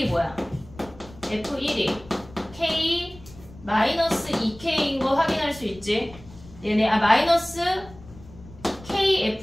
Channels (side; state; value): left; noise; rumble, 20 dB below the sound